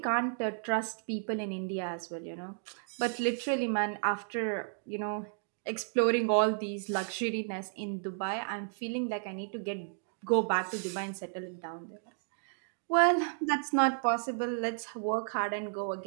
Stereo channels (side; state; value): left; silent; digital silence